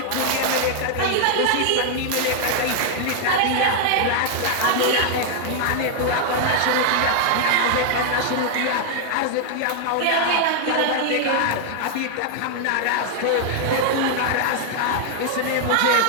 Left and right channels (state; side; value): different; both; correlation -0.01